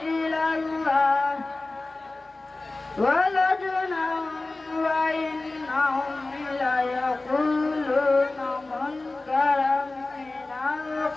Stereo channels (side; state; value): right; quieter; 3.1 dB